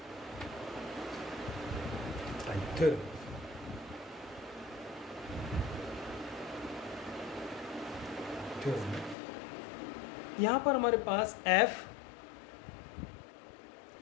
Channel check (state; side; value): drops out; right; at 9.2 s